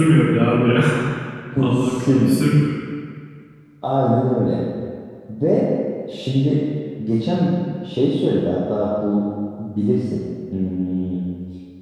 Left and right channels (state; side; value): identical; both; correlation 1.00